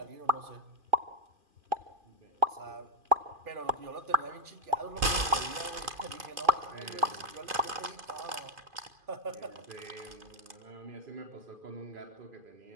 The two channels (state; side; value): late; left; 2.5 ms